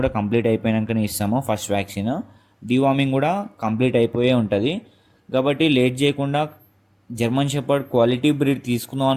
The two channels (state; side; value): identical; both; correlation 1.00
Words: కంప్లీట్ అయిపోయాకనే ఇస్తాము. ఫస్ట్ వ్యాక్సిన్ డీవార్మింగ్ కూడా కంప్లీట్ అయిపోయే ఉంటుంది. కాబట్టి లేట్ చేయకుండా జర్మన్ షెపర్డ్ క్వాలిటీ బ్రీడ్ తీసుకుందాం